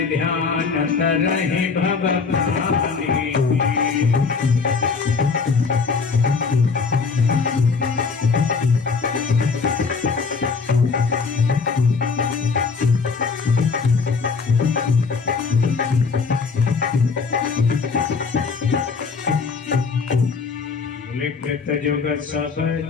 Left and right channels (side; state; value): right; quieter; 5.0 dB